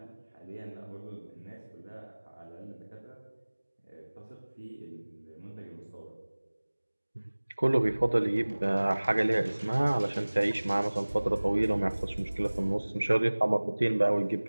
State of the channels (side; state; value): both; inverted; correlation -1.00